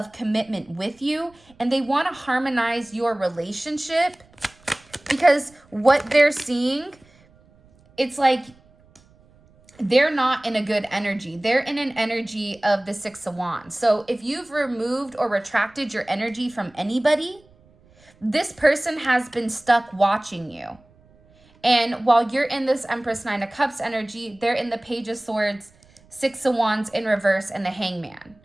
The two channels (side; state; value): right; noise; rumble, 30 dB below the sound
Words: commitment with you, and they want to harmonize your relationship, because what they're seeing, it's like they're not in a good energy. They're in an energy of the Six of Wands. So if you've removed or retracted your energy from anybody, this person has been stuck watching you. And while you're in this Empress Nine of Cups energy, they're in the Page of Swords, Six of Wands in reverse, and the Hangman.